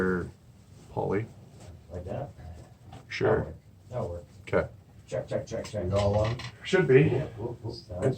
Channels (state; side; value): identical; both; correlation 1.00